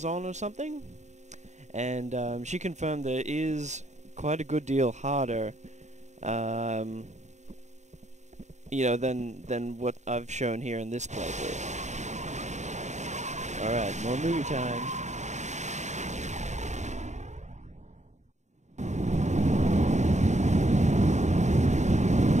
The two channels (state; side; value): late; left; 0.34 ms